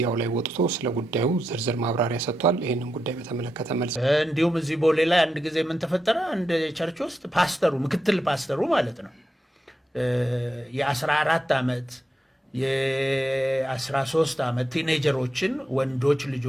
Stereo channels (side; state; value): both; normal; correlation 0.86